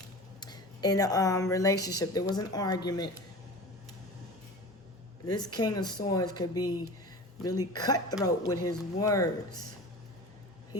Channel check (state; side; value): normal; both; correlation 0.35